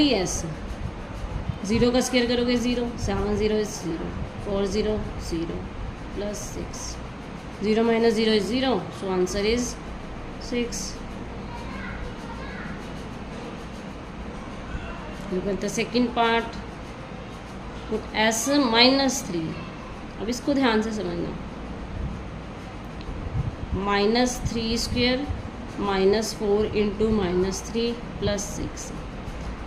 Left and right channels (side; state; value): both; identical; correlation 1.00